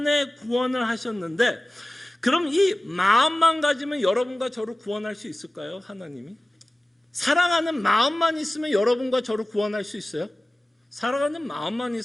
구원을 하셨는데, 그럼 이 마음만 가지면 여러분과 저를 구원할 수 있을까요? 하나님이? 사랑하는 마음만 있으면 여러분과 저를 구원할 수 있어요? 사랑하는 마음만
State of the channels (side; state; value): both; normal; correlation 0.96